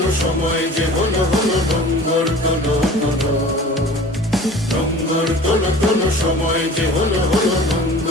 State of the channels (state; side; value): normal; both; correlation 0.42